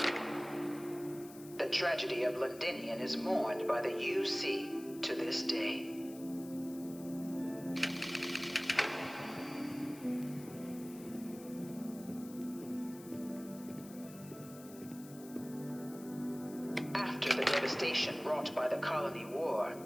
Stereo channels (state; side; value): noise; left; hiss, 18 dB below the sound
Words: The tragedy of Londinian is mourned by the UC to this day. After the devastation wrought by the Colony War,